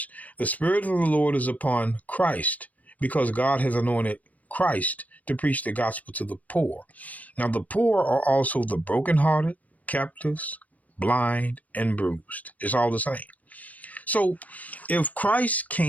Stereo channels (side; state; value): right; late; 0.073 ms